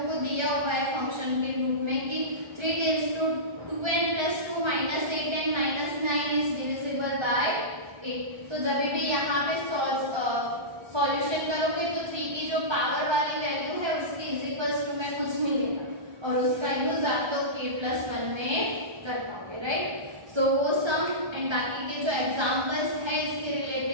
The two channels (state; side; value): late; left; 1.3 ms